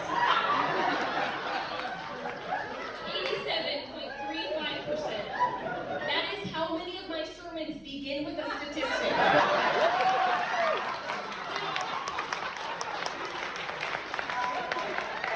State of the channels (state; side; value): noise; right; rumble, 30 dB below the sound